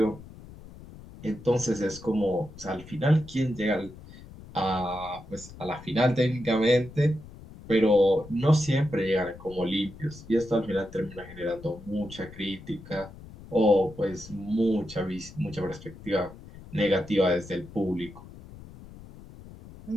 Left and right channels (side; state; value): left; noise; rumble, 17 dB below the sound